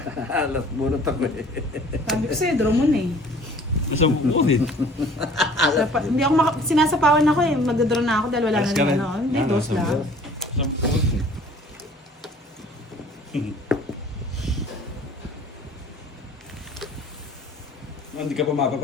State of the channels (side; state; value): both; normal; correlation 0.51